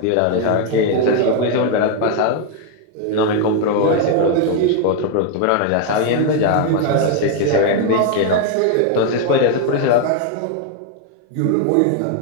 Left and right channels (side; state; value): both; different; correlation 0.00